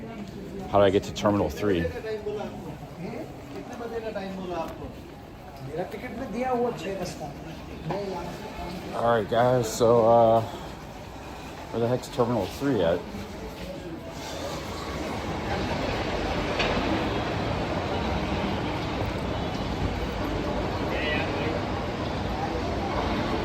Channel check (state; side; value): identical; both; correlation 1.00